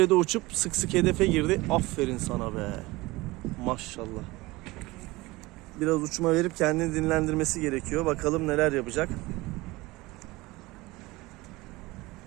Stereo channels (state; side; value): quieter; left; 21.1 dB